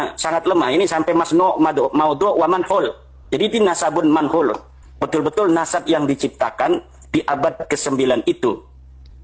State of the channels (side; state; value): both; identical; correlation 1.00